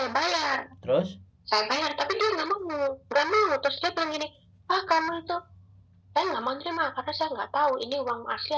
bayar. Terus? Saya bayar, tapi dia nggak mau. Terus dia bilang gini, kamu itu saya nggak mau terima karena saya nggak tahu ini uang asli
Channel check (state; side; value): identical; both; correlation 1.00